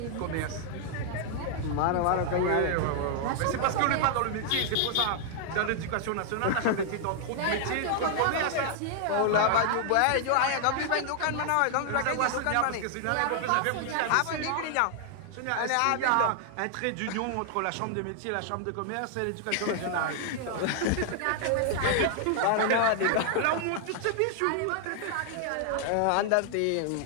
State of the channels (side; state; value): both; different; correlation 0.00